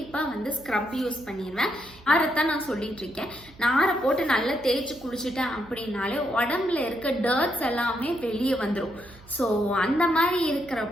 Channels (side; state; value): right; noise; hum, 23 dB below the sound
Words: வந்து ஸ்க்ரப் யூஸ் பண்ணிடுவேன். நாரைத்தான் நான் சொல்லிட்டு இருக்கேன். நாரை போட்டு நல்லா தேய்ச்சி குளிச்சுட்டேன் அப்படின்னாலே உடம்புல இருக்க டர்ட்ஸ் எல்லாமே வெளியே வந்துடும். ஸோ அந்த மாதிரி